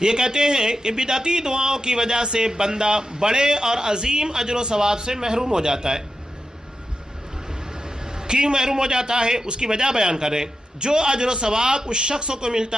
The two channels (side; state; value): both; normal; correlation 0.89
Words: کہتے ہیں کہ بدعتی دعاؤں کی وجہ سے بندہ بڑے اور عظیم اجر و ثواب سے محروم ہو جاتا ہے. کیوں محروم ہو جاتا ہے اس کی وجہ بیان کریں. جو اجر و ثواب اس شخص کو